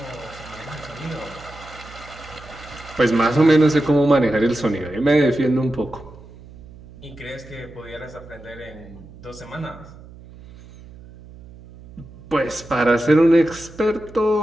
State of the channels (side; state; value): right; noise; hum, 19 dB below the sound